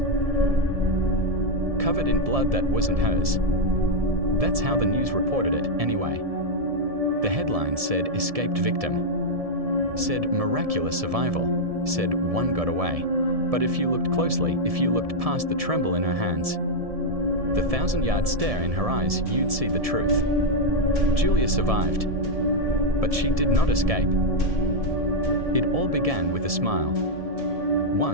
covered in blood that wasn't hers. That's how the news reported it, anyway. The headline said escaped victim, said miraculous survival, said one got away. But if you looked closely, if you looked past the tremble in her hands, the 1,000-yard stare in her eyes, you'd see the truth. Julia survived, but she did not escape. It all began with a smile.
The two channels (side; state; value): left; late; 1.7 ms